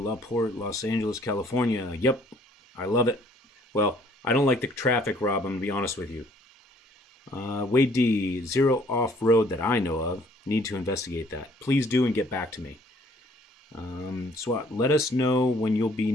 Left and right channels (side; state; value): both; normal; correlation 0.60